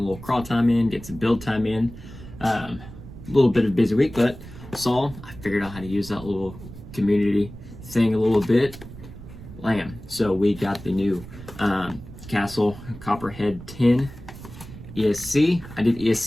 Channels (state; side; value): noise; right; rumble, 15 dB below the sound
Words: crawl time in, get some build time in. A little bit of a busy week, but I figured out how to use that little community thing a little bit. So we got the new Castle Copperhead 10 ESC. I did